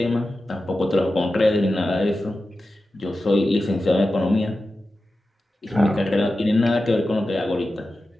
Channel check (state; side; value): normal; both; correlation 0.93